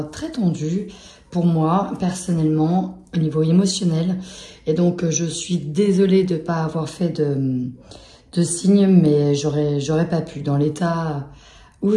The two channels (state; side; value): identical; both; correlation 1.00